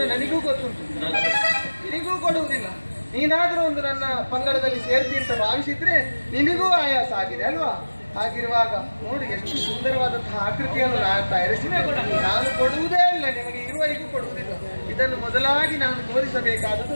ನನಗೂ ಗೊತ್ತುಂಟು, ನಿನಗೂ ಕೊಡುವುದಿಲ್ಲ. ನೀನಾದ್ರೂ ಒಂದು ನನ್ನ ಪಂಗಡದಲ್ಲಿ ಸೇರ್ತಿ ಅಂತ ಭಾವಿಸಿದ್ರೆ ನಿನಗೂ ಆಯಾಸ ಆಗಿದೆ ಅಲ್ವಾ? ಹಾಗಿರುವಾಗ ನೋಡಿ ಎಷ್ಟು ಸುಂದರವಾದಂತಹ ಆಕೃತಿಯನ್ನು ನಾನು ತಯಾರಿಸಿದ್ದೇನೆ. ನಾನು ಕೊಡುವುದೇ ಇಲ್ಲ, ನಿಮಗೆ ಇರುವವರೆಗೂ ಕೊಡುವುದಿಲ್ಲ. ಇದನ್ನು ಮೊದಲಾಗಿ ನಾನು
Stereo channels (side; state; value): both; inverted; correlation -1.00